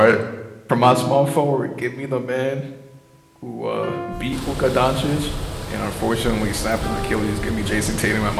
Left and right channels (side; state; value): both; identical; correlation 1.00